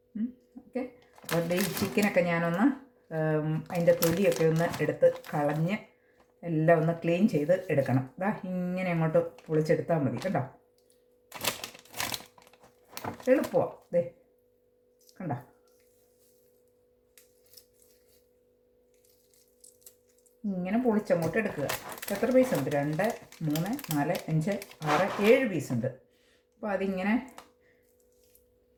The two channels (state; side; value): identical; both; correlation 1.00